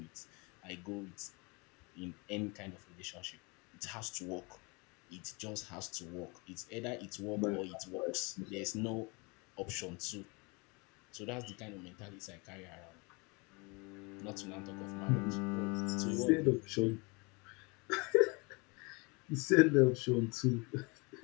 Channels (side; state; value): right; quieter; 29.1 dB